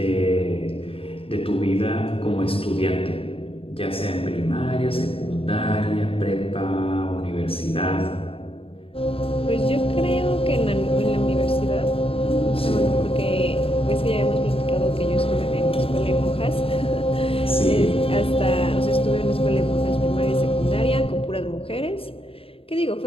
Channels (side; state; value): right; late; 0.27 ms